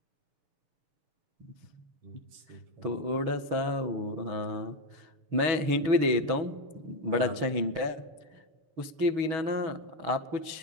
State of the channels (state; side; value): late; left; 6.2 ms